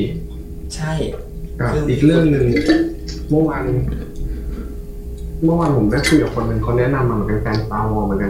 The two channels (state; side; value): identical; both; correlation 1.00